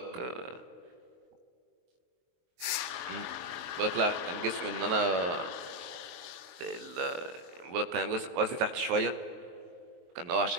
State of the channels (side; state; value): left; late; 23 ms